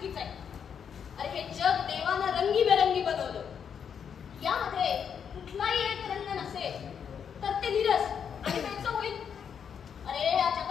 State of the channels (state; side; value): quieter; right; 7.5 dB